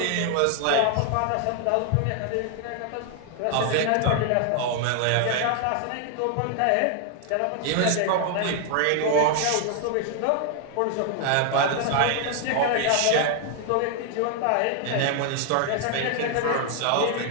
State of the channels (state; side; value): different; both; correlation 0.00